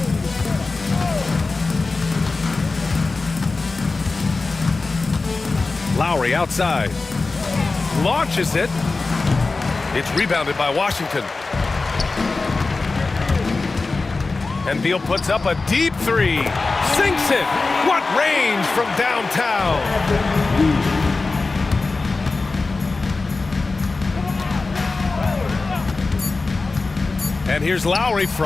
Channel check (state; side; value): quieter; right; 3.7 dB